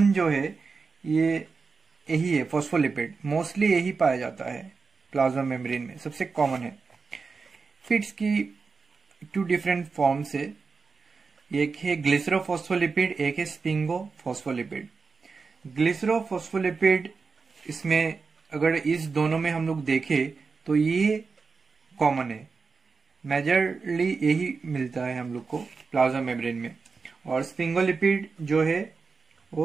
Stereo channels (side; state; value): left; quieter; 4.7 dB